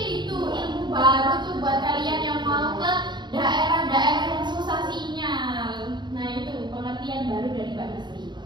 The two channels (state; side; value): late; left; 0.21 ms